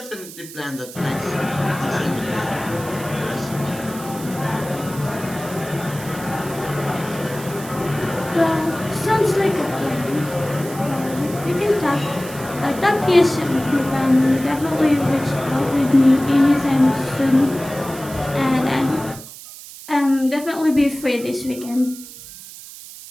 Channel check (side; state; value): right; noise; hiss, 15 dB below the sound